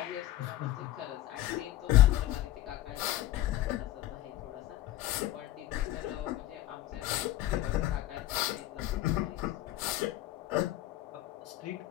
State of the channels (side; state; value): right; quieter; 14.6 dB